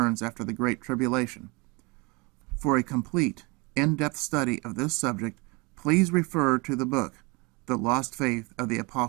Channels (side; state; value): left; quieter; 28.0 dB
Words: after the Great Tribulation. For a complete, in-depth study of this subject, please refer to the book, The Lost Faith of the